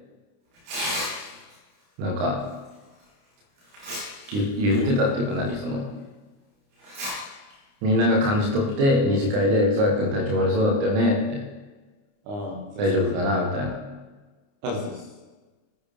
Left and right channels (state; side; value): late; left; 29 ms